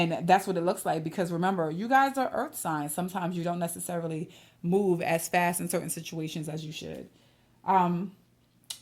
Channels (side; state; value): both; identical; correlation 1.00